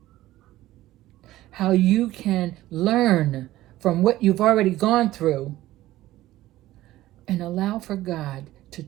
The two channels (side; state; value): left; quieter; 15.7 dB